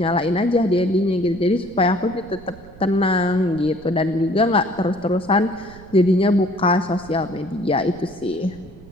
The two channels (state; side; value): noise; right; rumble, 20 dB below the sound